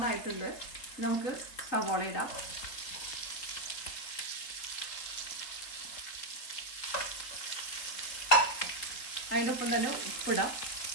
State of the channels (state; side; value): late; right; 4.0 ms